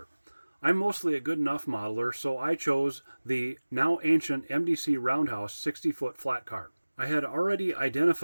I'm mostly a good enough modeler, so I chose the now ancient MDC Roundhouse 60-foot Flatcar. I had already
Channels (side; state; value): both; inverted; correlation -1.00